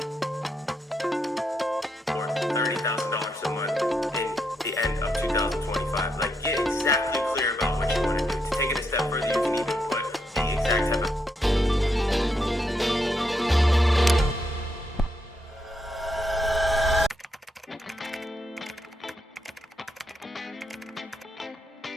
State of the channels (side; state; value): both; normal; correlation 0.80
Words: Or $30,000 a month in the end of 2025. Like, get exactly clear about what you want to do. To take it a step further, you can even put the exact type of